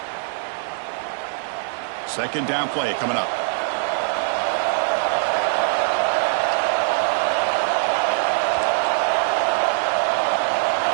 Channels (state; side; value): silent; left; digital silence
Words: Second down play coming up.